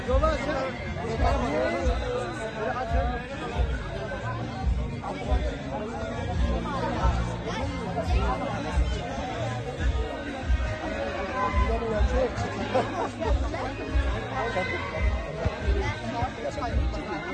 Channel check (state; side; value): identical; both; correlation 1.00